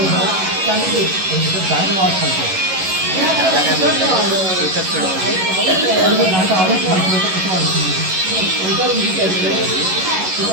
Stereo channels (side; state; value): left; late; 11 ms